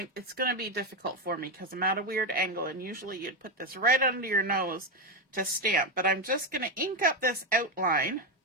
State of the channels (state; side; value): normal; both; correlation 0.09